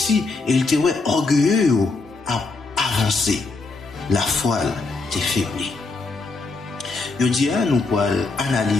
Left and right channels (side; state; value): right; quieter; 3.7 dB